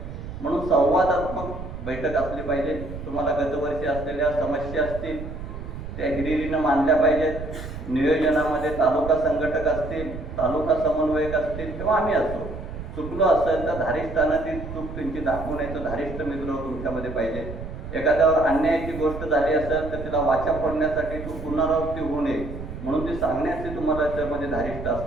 म्हणून संवादात्मक बैठक असली पाहिजे। तुम्हाला गतवर्षी असलेल्या समस्या असतील त्या हिरिरीनं मांडल्या पाहिजेत। नियोजनामध्ये तालुका संघटक असतील, तालुका समन्वयक असतील किंवा आम्ही असतो, चुकलो असेल तर धारिष्ठानं चूक त्यांची दाखवून यायचं धारिष्ठ मित्र तुमच्यामध्ये पाहिजे। एखाद्यावर अन्यायाची गोष्ट झाली असेल तर तिला वाचा फोडण्यासाठी तू पुनरावृत्ती होऊ नये म्हणून ते सांगण्याचे तुम्हाला त्यामध्ये धारिष्ठ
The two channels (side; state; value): right; noise; rumble, 9 dB below the sound